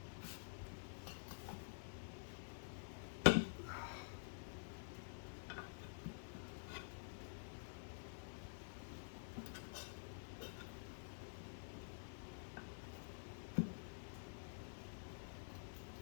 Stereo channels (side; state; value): right; silent; digital silence